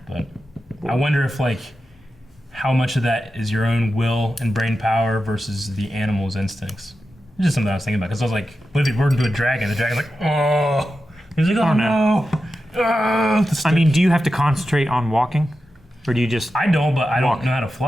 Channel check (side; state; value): both; normal; correlation 0.91